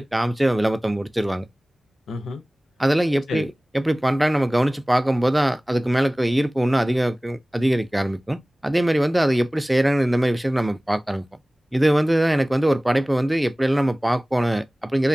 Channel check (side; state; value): both; normal; correlation 0.98